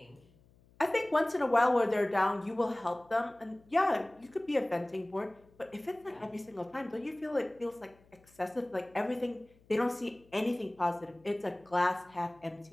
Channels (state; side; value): noise; left; hum, 29 dB below the sound